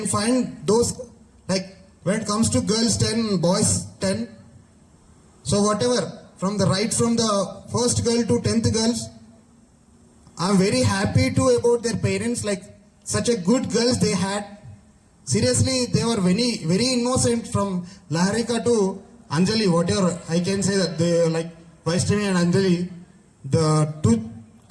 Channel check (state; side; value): identical; both; correlation 1.00